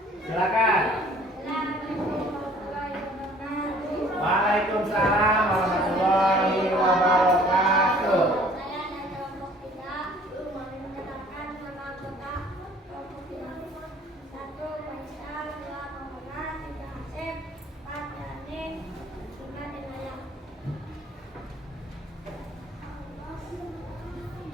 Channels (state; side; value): normal; both; correlation 0.54